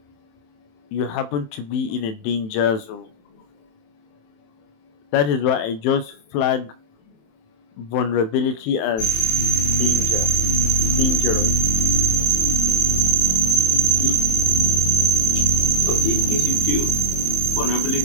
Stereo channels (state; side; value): late; right; 27 ms